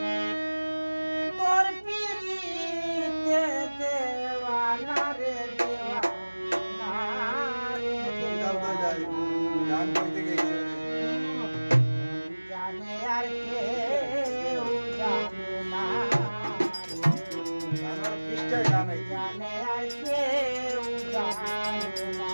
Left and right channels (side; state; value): both; inverted; correlation -1.00